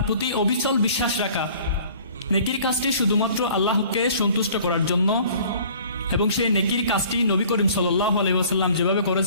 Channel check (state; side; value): inverted; both; correlation -0.51